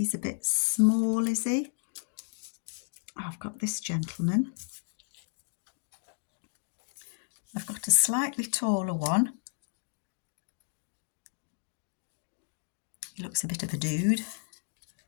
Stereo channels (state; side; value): silent; right; digital silence